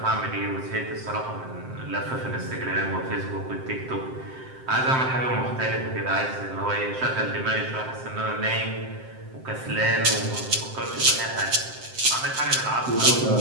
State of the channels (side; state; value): left; late; 7.7 ms